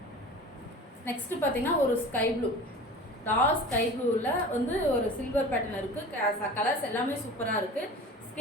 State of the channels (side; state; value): both; normal; correlation 0.38